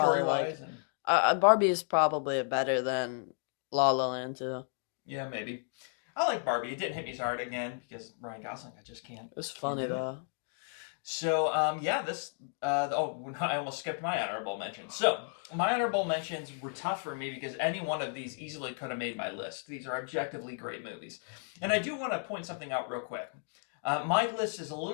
and Barbie is probably better than La La Land too. Yeah, maybe. I like Barbie. It didn't hit me as hard again because Ryan Gosling. I just can't. I can't do it. So I almost skipped my honorable mentions. So my honorable mentions were tough for me because any one of these easily could have made my list. These are objectively great movies, and I do want to point something out real quick. My list is a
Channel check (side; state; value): right; silent; 56 dB below the other